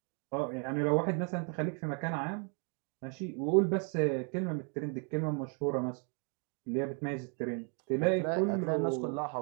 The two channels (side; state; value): left; quieter; 39.4 dB